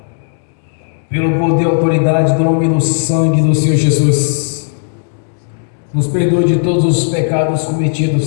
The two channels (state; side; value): silent; right; 66 dB below the other